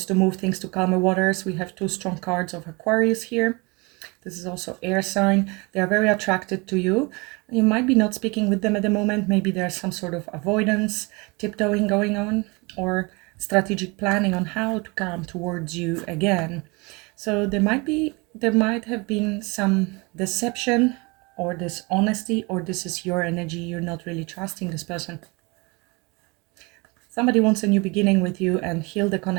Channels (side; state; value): left; quieter; 27.4 dB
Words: to move things to calmer waters. We have two strong cards of Aquarius here. This is also air sign. They are very attracted to you. You might be not speaking with them at the moment. Maybe there's some sort of avoidance, tiptoeing going on, or strategic planning on how to come towards you again. So there might have been some deception or dishonesty, or this is your energy. You're not really trusting this person. Somebody wants a new beginning with you and heal the